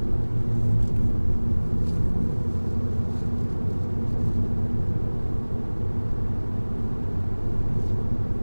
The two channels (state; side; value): inverted; both; correlation -1.00